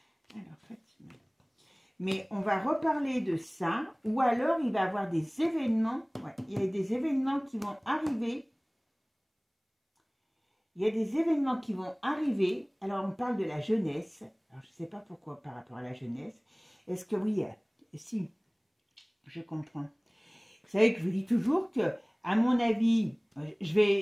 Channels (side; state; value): both; identical; correlation 1.00